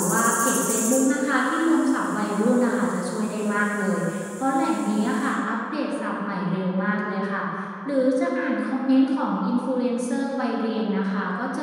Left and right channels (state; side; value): identical; both; correlation 1.00